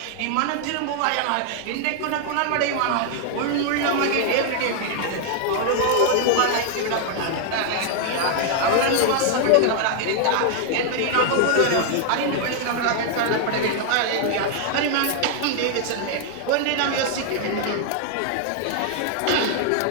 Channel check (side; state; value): both; different; correlation 0.00